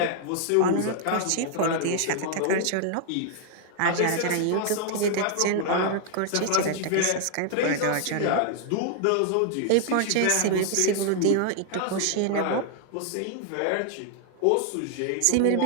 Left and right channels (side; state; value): both; different; correlation 0.00